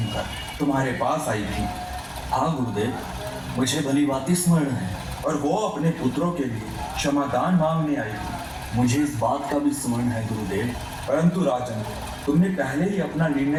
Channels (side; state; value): both; identical; correlation 1.00